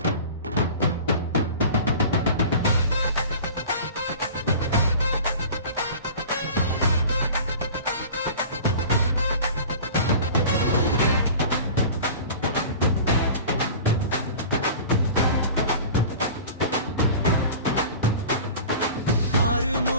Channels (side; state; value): both; inverted; correlation -0.39